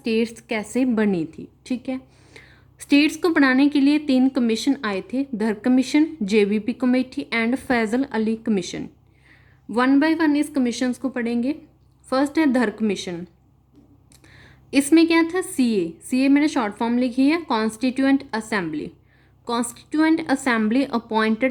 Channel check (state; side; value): identical; both; correlation 1.00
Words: कैसे बनी थी। ठीक है। स्टेट्स को बनाने के लिए 3 कमीशन आए थे, Dhar commission, JBP committee and Fazal Ali commission. One by one इस कमीशंस को पढ़ेंगे। फर्स्ट है धर कमीशन। इसमें क्या था, सीए मैंने शॉर्ट फॉर्म लिखी है, constituent assembly. Constituent assembly